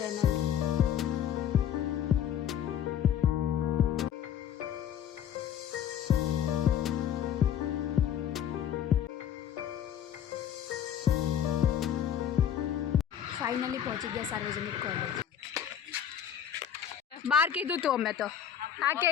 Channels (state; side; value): quieter; right; 9.5 dB